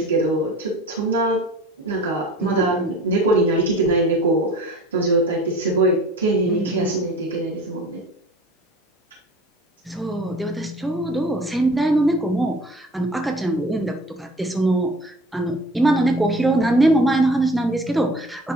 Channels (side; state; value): both; normal; correlation 0.44